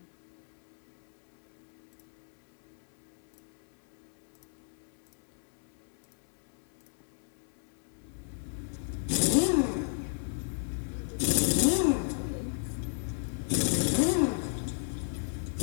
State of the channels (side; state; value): right; silent; digital silence